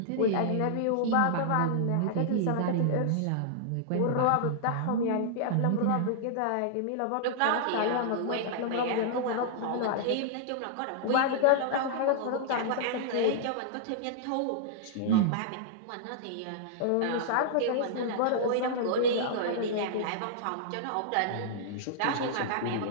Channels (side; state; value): both; different; correlation -0.01